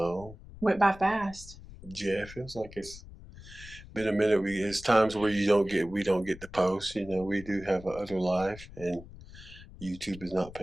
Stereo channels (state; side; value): noise; left; rumble, 17 dB below the sound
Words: Went by fast. yeah, it feels like it's been a minute. It's times where we don't get the post. You know, we do have a other life, and YouTube is not